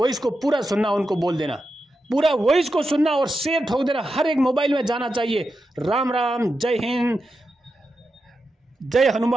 को पूरा सुनना, उनको बोल देना, पूरा वॉइस को सुनना और शेयर ठोक देना, हर एक मोबाइल में जाना चाहिए। राम राम, जय हिंद, जय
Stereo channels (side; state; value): both; normal; correlation 0.88